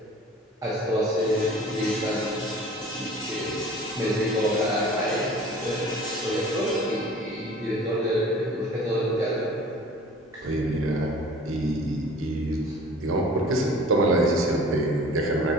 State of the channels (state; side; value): normal; both; correlation 0.45